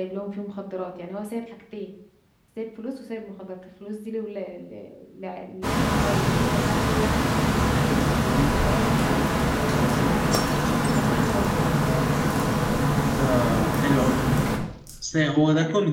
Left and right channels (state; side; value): identical; both; correlation 1.00